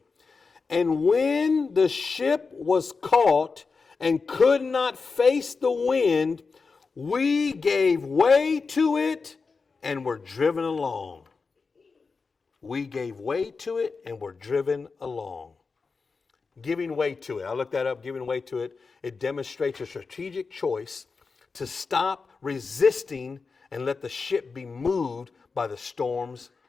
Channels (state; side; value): quieter; right; 4.6 dB